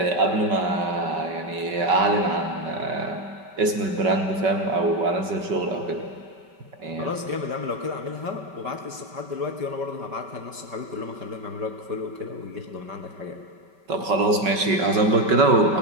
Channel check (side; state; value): left; late; 5.3 ms